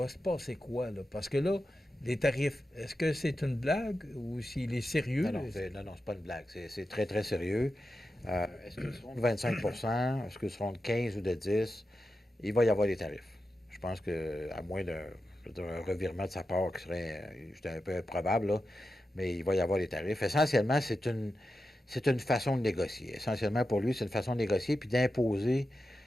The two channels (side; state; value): both; normal; correlation 0.90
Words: se passer quoi, là? Parce que là, les tarifs, est-ce que c'est une blague ou s'il est sérieux? Non, c'est pas une blague. C'est très, très sérieux. Est-ce qu'ils seront de 25 est-ce qu'ils seront de 15 ou de 10 il va y avoir des tarifs. Je pense qu'à moins d'un revirement de sa part qui serait un peu improbable, là, mais il va y avoir des tarifs. Essentiellement, c'est une façon de négocier. Essentiellement, pour lui, c'est une façon de négocier puis d'imposer